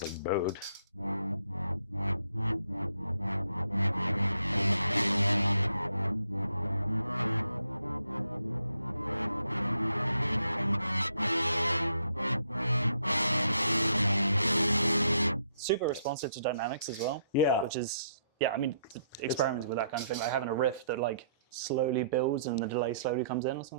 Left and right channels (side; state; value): both; inverted; correlation -0.72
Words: like bowed. Super responsive to dynamics as well. Yeah. Which is, I mean, experimenting with that kind of thing, like having a riff that like slowly builds and the delay slowly comes in or